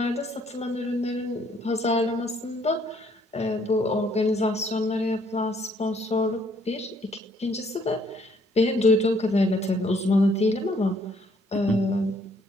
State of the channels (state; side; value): normal; both; correlation 0.66